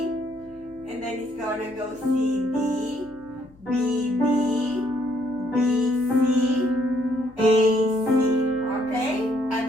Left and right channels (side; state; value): left; noise; hum, 27 dB below the sound